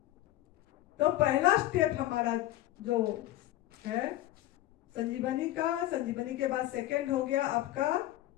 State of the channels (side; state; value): right; quieter; 15.1 dB